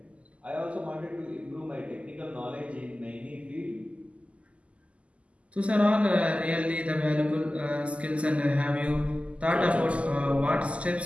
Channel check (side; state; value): left; late; 0.061 ms